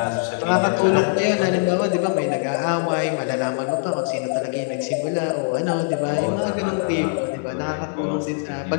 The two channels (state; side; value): silent; right; 64 dB below the other